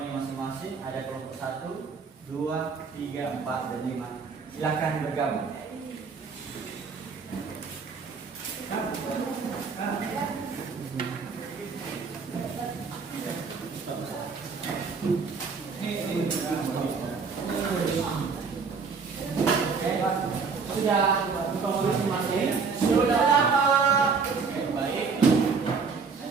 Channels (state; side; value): quieter; left; 5.2 dB